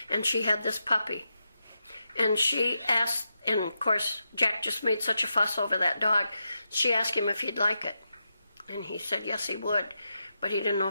and she had this puppy. And she asked, and of course, Jack just made such a fuss over that dog. She asked him if he'd like it. And he said yes, he would. But he didn't know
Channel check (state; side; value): inverted; both; correlation -0.87